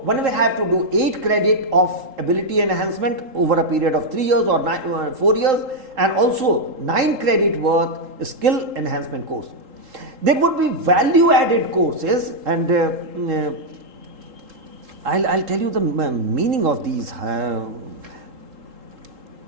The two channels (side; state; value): left; late; 3.8 ms